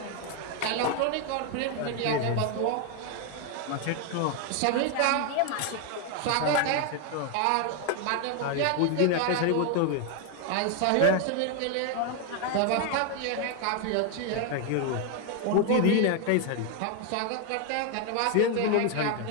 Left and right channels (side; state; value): both; different; correlation 0.01